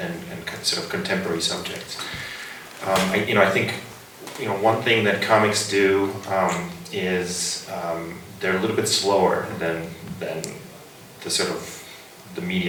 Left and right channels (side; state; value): both; identical; correlation 1.00